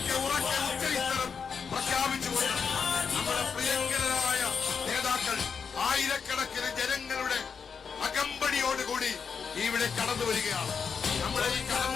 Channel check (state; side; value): quieter; right; 6.1 dB